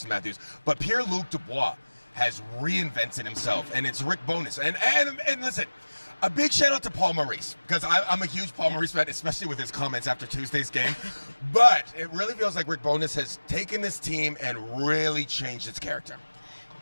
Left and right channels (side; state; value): both; inverted; correlation -1.00